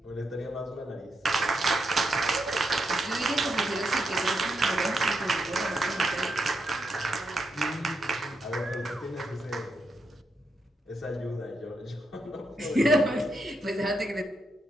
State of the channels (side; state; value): both; normal; correlation 0.82